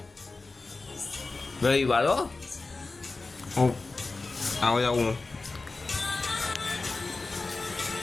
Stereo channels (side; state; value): right; quieter; 3.6 dB